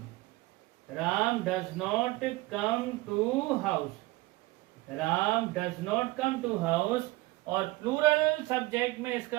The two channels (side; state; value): left; quieter; 20.8 dB